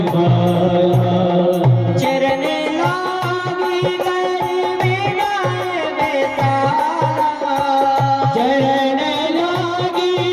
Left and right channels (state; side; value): identical; both; correlation 1.00